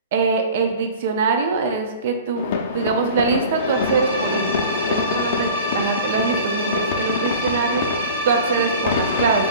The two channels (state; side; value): inverted; both; correlation -0.40